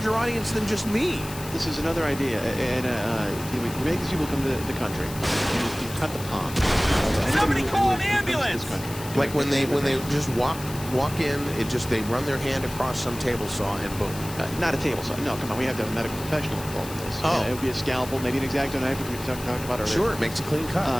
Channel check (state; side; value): noise; left; hiss, 13 dB below the sound